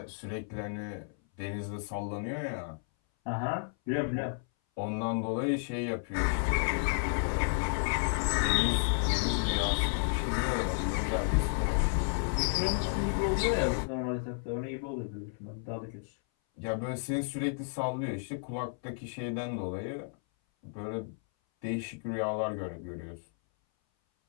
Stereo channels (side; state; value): right; silent; 56 dB below the other